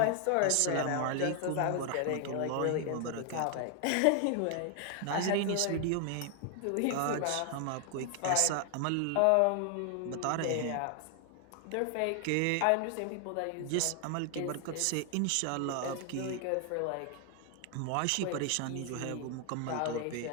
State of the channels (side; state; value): both; different; correlation 0.00